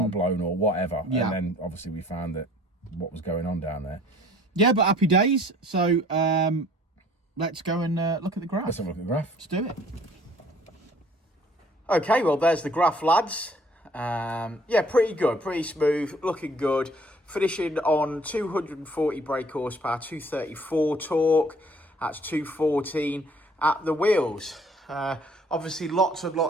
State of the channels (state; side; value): normal; both; correlation 0.56